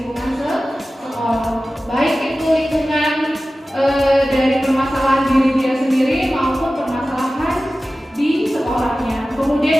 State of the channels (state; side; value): normal; both; correlation 0.95